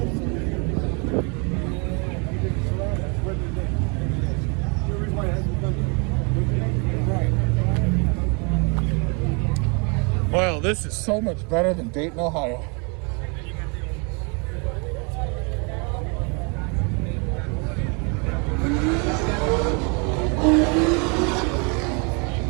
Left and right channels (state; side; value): quieter; left; 33.6 dB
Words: Well, this is so much better than Dayton, Ohio.